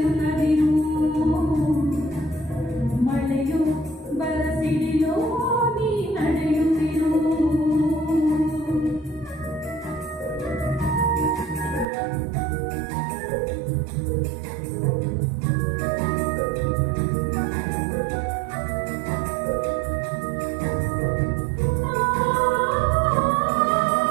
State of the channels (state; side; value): drops out; left; at 11.9 s